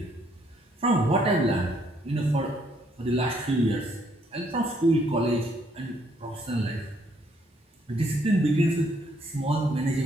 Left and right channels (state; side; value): normal; both; correlation 0.69